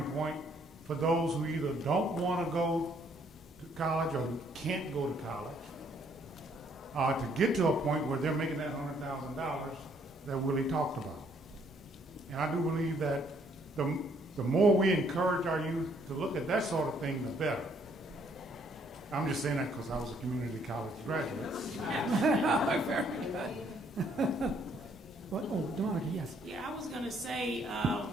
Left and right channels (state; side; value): normal; both; correlation 0.67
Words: point for those who either don't want to go to college or can't go to college, to get to a point where they're making that $100,000 that Willie talked about. And I do believe that the more we encourage our youth to look at that sort of thing, the better. I'm just saying that because I was a community college graduate. Very good. What? Oh, Monica, yes. Yeah, I was going to say,